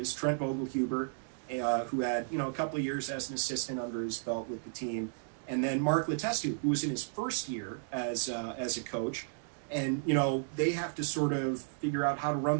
Trent Vogelhuber, who had a couple of years as an assistant under his belt with the team, and then Mark Letestu, who was in his first year as a coach. And they have to sort of figure out how to run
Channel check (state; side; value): silent; left; digital silence